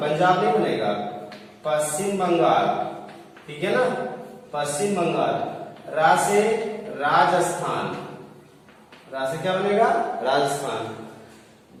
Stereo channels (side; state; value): both; identical; correlation 1.00